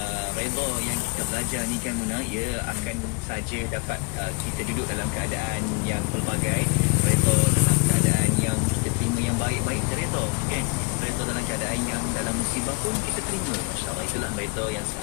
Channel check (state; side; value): quieter; right; 31.8 dB